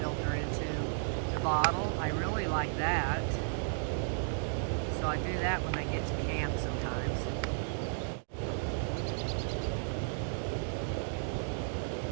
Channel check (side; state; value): left; silent; digital silence